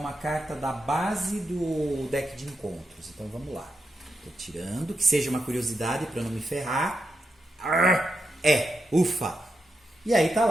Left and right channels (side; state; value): both; normal; correlation 0.85